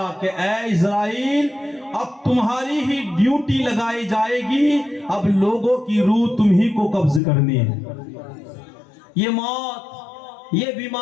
کہ اے اسرائیل اب تمہاری ہی ڈیوٹی لگائی جائے گی، اب لوگوں کی روح تمہیں کو قبض کرنی ہے۔ یہ موت، یہ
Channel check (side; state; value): right; drops out; at 7.2 s